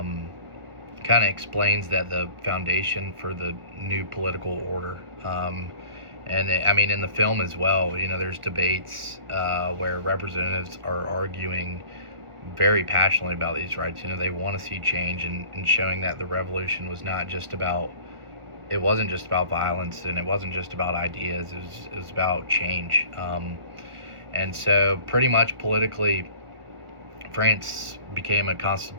Kind of explains that the foundation for the new political order. I mean, in the film as well, there's debates where representatives are arguing very passionately about these rights. They want to see change, and showing that the revolution was not just about, it wasn't just about violence, and it wasn't just about ideas. It was about change. And so pretty much politically, France became a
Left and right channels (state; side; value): late; left; 1.4 ms